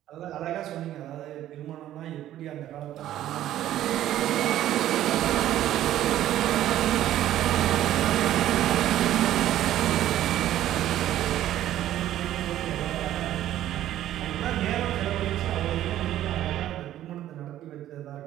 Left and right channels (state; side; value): quieter; left; 12.7 dB